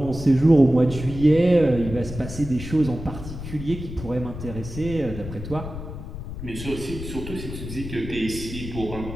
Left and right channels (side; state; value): left; noise; rumble, 9 dB below the sound